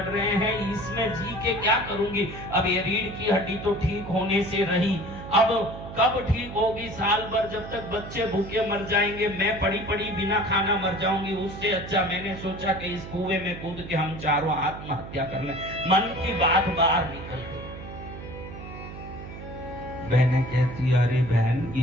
रहे हैं, इसमें जी के क्या करूंगी? अब ये रीढ़ की हड्डी तो ठीक होने से रही, अब कब ठीक होगी? साल भर जब तक बच्चे भूखे मर जाएंगे, मैं पड़ी पड़ी बिना खाना मर जाऊंगी। उससे अच्छा मैंने सोचा कि इस कुएं में कूद के हम चारों आत्महत्या कर लें। मन की बात बाहर निकल गई। बहनें कहती, अरे बहन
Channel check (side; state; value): right; noise; hum, 12 dB below the sound